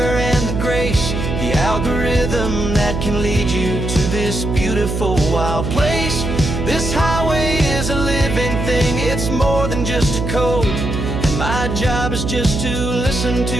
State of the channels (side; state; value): right; noise; hum, 3 dB below the sound